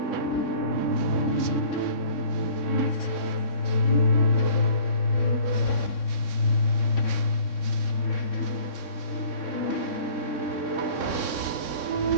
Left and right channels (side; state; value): right; late; 3.6 ms